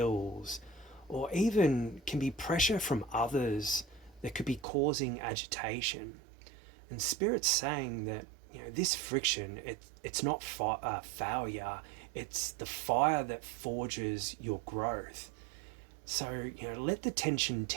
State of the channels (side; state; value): left; drops out; at 4.7 s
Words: or even can be pressure from others that could be causing agitation. And Spirit's saying that this friction, it's not failure, it's the fire that forges your growth. So let the tension